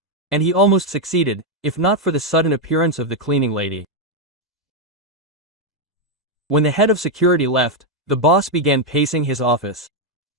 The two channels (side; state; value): both; normal; correlation 0.02